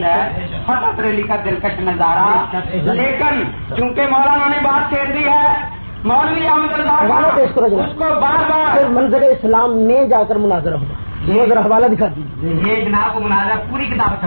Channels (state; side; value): inverted; both; correlation -1.00